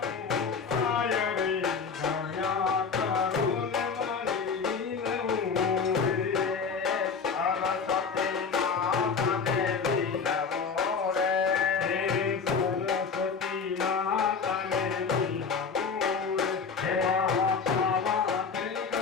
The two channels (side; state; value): right; quieter; 5.6 dB